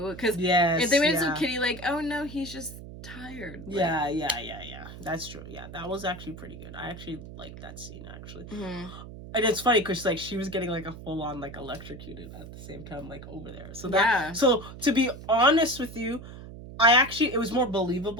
Because if they made it so kiddie, like, oh no, he's just tired. Like, yeah. That's true. Yeah, that was actually pretty good. I actually liked that scene actually. Mm-hmm. And it's funny because like she was getting like a full on like electrocuted at the same time like over there. So to be honest with you. It was more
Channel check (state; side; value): noise; right; hum, 13 dB below the sound